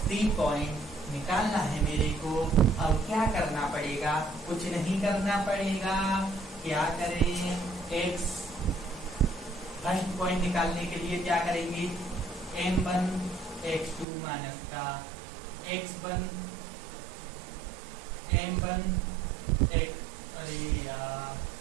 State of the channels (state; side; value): drops out; left; at 14.1 s